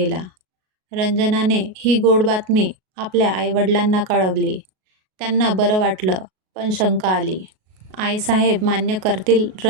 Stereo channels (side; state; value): left; late; 38 ms